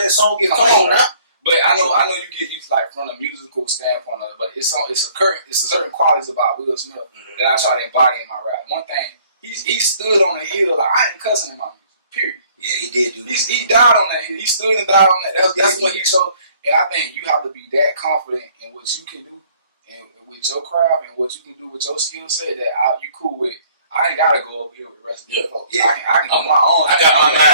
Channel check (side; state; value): both; inverted; correlation -0.58